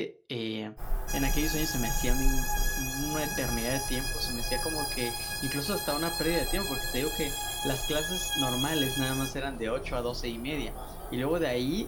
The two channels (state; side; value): identical; both; correlation 1.00